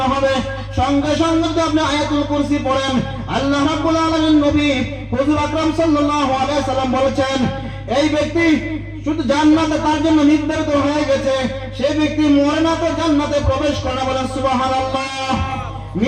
হবে, সঙ্গে সঙ্গে যদি আপনি আয়াতুল কুরসি পড়েন, আল্লাহ রাব্বুল আলামিন নবী হুজুর আকরাম সাল্লাল্লাহু আলাইহি সাল্লাম বলেছেন এই ব্যক্তি শুধু জান্নাতে তার জন্য নির্ধারিত হয়ে গেছে, সেই ব্যক্তি মরে না তো জান্নাতে প্রবেশ করে না, বলেন সুবহানাল্লাহ।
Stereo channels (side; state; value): both; identical; correlation 1.00